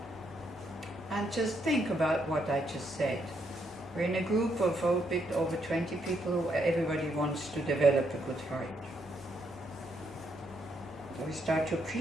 And just think about what I just said. We're in a group of a bit over 20 people who everybody wants to develop a good heart. So we start to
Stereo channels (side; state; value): both; normal; correlation 0.76